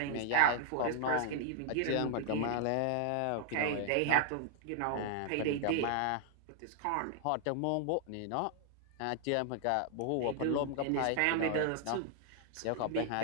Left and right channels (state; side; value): different; both; correlation 0.00